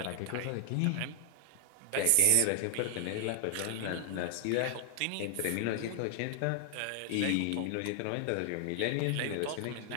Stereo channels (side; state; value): both; different; correlation 0.00